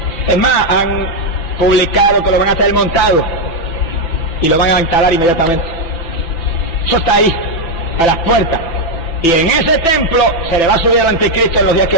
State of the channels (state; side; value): late; right; 6.0 ms